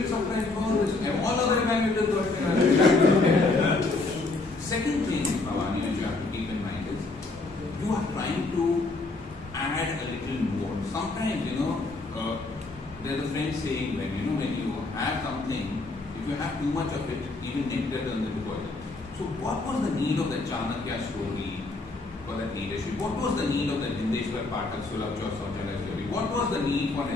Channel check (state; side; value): quieter; right; 3.4 dB